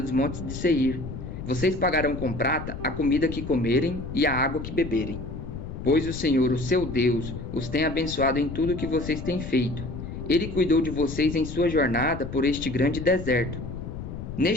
montes de Seir. Vocês pagarão com prata a comida que comerem e a água que beberem. Pois o Senhor, o seu Deus, os tem abençoado em tudo que vocês têm feito. Ele cuidou de vocês em sua jornada por este grande deserto.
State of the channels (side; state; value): left; noise; rumble, 8 dB below the sound